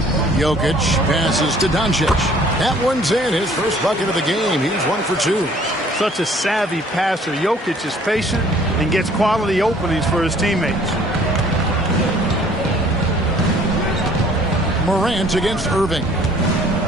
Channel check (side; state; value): both; normal; correlation 0.56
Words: Jokic passes to Doncic. That one's in, his first bucket of the game. He's 1 for 2. Such a savvy passer. Jokic is patient and gets quality openings for his teammates. Morant against Irving.